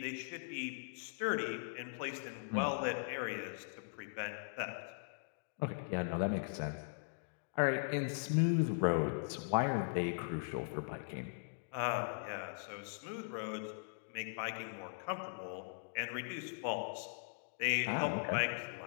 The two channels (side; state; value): right; silent; digital silence